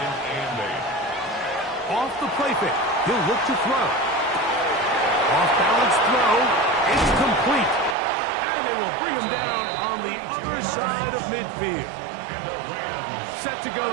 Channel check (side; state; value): left; drops out; at 8.0 s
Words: and 8. Off the play fake. He'll look to throw. Off balance throw. It's complete. And they will bring him down on the other side of midfield. And the Rams Set to go